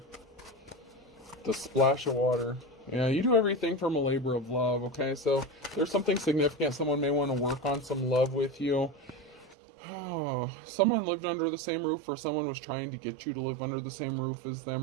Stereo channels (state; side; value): drops out; left; at 9.6 s